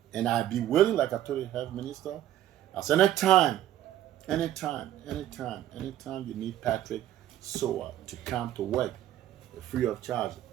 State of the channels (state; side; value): quieter; left; 12.6 dB